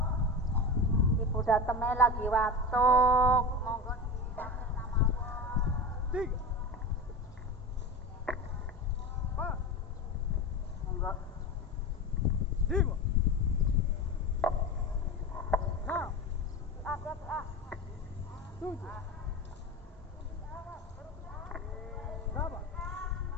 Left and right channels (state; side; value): normal; both; correlation 0.26